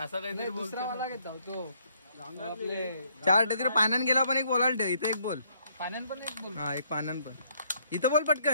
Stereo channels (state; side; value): inverted; both; correlation -0.68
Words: काहीतरी दुसरा मला घेत तो आपले 4 तिकडे पाण्यान गेला पण एक बोलायला ठेव. इथे एक बोल. पाण्यान पण एक बोल. हा एक पाण्यान पण. इथं बोल